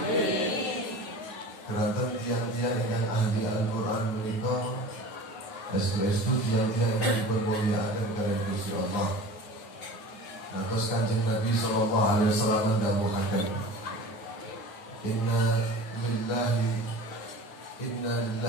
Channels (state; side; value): late; right; 9.5 ms